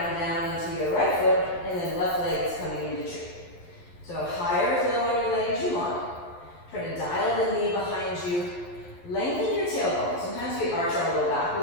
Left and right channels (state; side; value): late; right; 11 ms